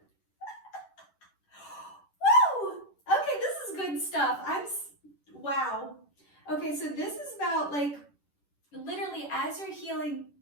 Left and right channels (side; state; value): right; late; 10 ms